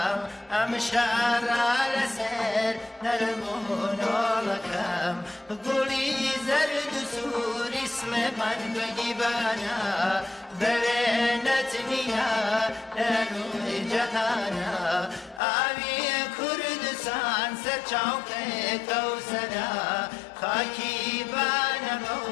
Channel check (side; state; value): right; drops out; at 15.4 s